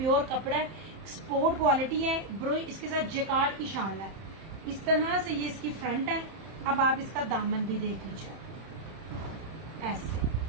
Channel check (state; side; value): late; left; 31 ms